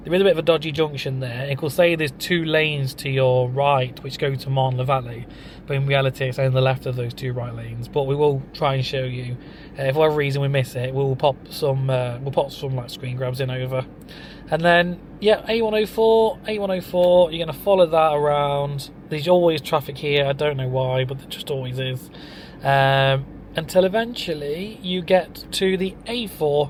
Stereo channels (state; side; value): identical; both; correlation 1.00